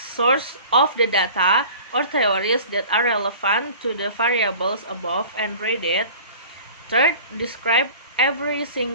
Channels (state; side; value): inverted; both; correlation -0.43